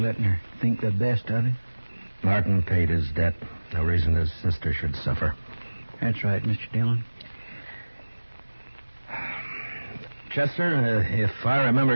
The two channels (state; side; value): inverted; both; correlation -1.00